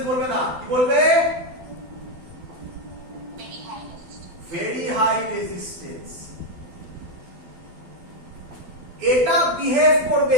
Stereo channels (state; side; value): late; left; 12 ms